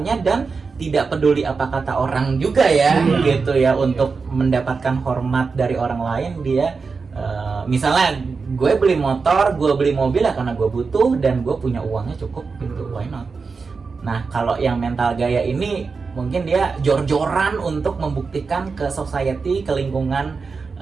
dan tidak peduli apa kata orang juga ya, gitu ya, untuk mendapatkan hormat dari orang lain. Dia misalnya gue beli motor, gue beli mobil ya karena gue butuh dan gue punya uangnya cukup gitu, why not? Nah kalau yang mental gaya ini mungkin dia jor-joran untuk membuktikan ke society, ke lingkungan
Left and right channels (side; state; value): left; quieter; 4.8 dB